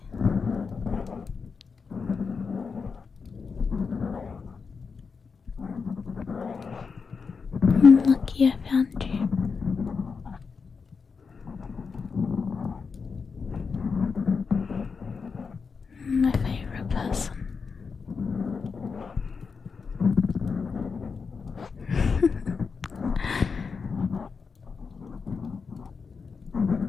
I'm lucky I found you. My favorite person.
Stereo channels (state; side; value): quieter; right; 5.3 dB